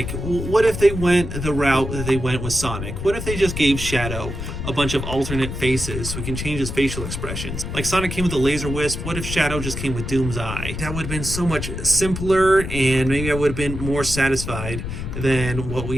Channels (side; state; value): left; noise; rumble, 6 dB below the sound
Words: what if they went the route that they went with Sonic? What if they just gave Shadow a bunch of alternate faces so we can change his facial expressions? Like Sonic came with a laser wisp, what if Shadow just came with Doom's eye? That would have been so much simpler, and maybe I would have been more satisfied than what